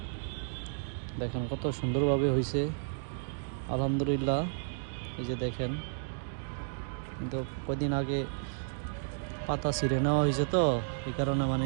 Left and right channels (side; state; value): left; silent; digital silence